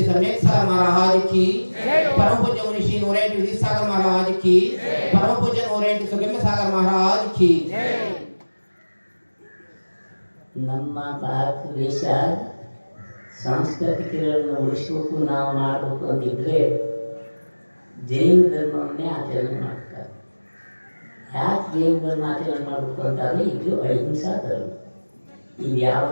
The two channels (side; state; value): both; inverted; correlation -1.00